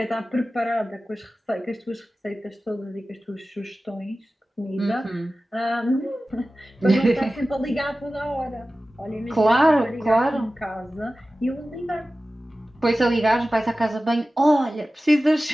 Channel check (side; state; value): both; normal; correlation 0.96